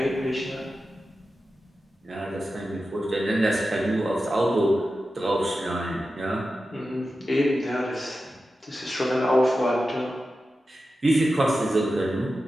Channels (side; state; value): both; normal; correlation 0.92